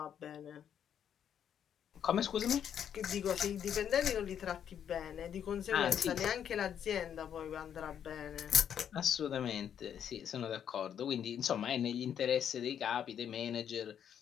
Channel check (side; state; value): right; quieter; 8.9 dB